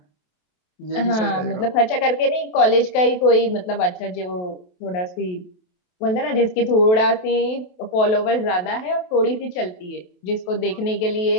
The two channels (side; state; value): right; late; 28 ms